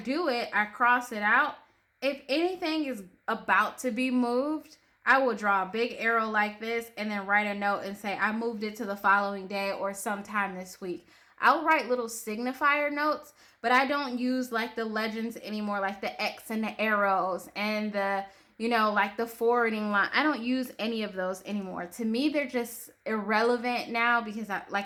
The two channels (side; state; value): both; identical; correlation 1.00